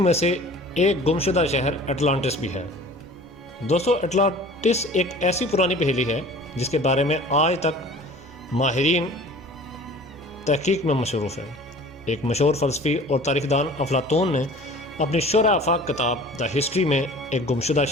میں سے ایک گمشدہ شہر اٹلانٹس بھی ہے۔ دوستو، اٹلانٹس ایک ایسی پرانی پہیلی ہے جس کے بارے میں آج تک ماہرین تحقیق میں مصروف ہیں۔ ایک مشہور فلسفی اور تاریخ دان افلاطون نے اپنی شرح آفاق کتاب دا ہسٹری میں ایک گمشدہ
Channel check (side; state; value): both; normal; correlation 0.44